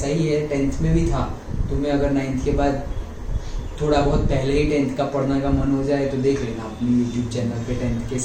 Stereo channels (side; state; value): both; identical; correlation 1.00